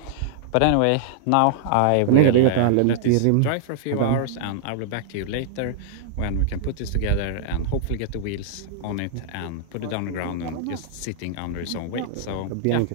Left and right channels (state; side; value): different; both; correlation -0.01